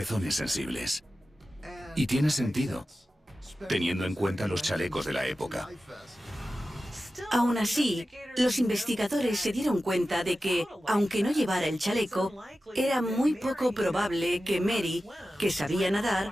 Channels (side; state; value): both; normal; correlation 0.94